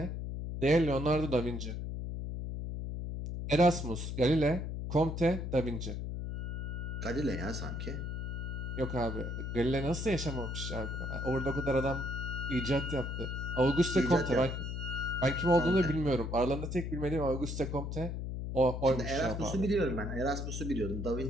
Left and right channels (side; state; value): left; noise; hum, 4 dB below the sound